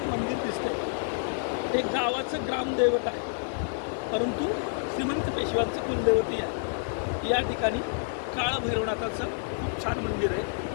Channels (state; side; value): silent; right; digital silence